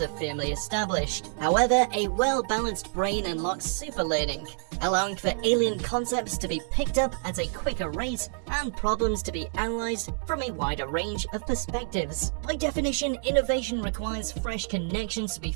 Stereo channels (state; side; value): silent; left; digital silence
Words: are firmly established. However, a well-balanced brain unlocks superlearning, allowing for alien concepts to be picked up at a quicker rate and problems to be analyzed from a wider range of perspectives. By definition, innovation requires fresh connections to be